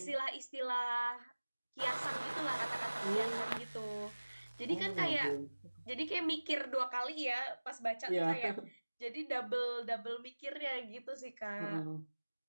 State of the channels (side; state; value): both; inverted; correlation -1.00